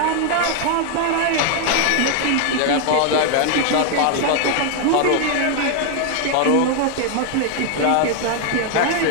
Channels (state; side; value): different; both; correlation 0.00